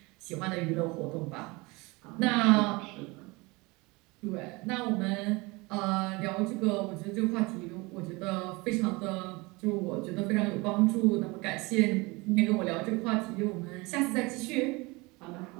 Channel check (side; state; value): left; quieter; 24.9 dB